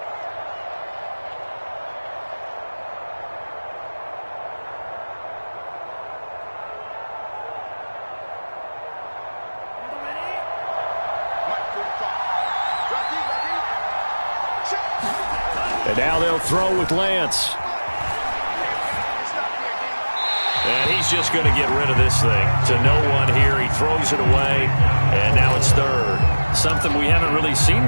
And now they'll throw with Lance. And he's just going to get rid of this thing. To no one here. He throws it away. And now it's third. Something we haven't really seen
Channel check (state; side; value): inverted; both; correlation -1.00